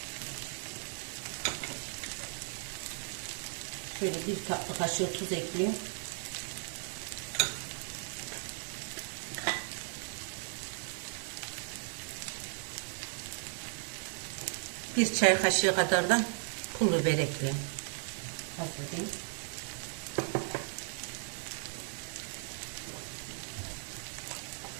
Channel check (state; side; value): silent; left; 54 dB below the other